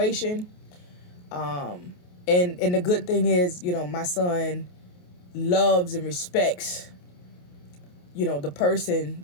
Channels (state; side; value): late; right; 28 ms